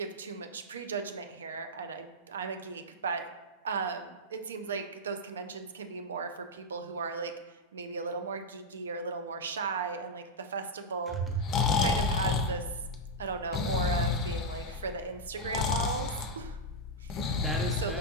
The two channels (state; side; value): normal; both; correlation -0.03